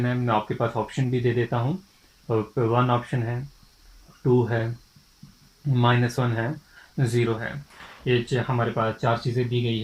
है, मैं आपके पास ऑप्शन भी दे देता हूँ। 1 ऑप्शन है, 2 है, -1 है, 0 है। ये हमारे पास 4 चीज़ें दी गई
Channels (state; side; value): identical; both; correlation 1.00